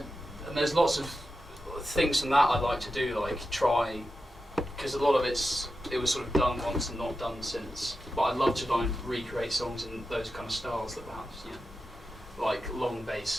and there's lots of things from that I like to do, like try, because a lot of it was sort of done once and not done since. But I love to try and recreate songs in those kind of styles that perhaps, like long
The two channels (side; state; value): both; normal; correlation 0.90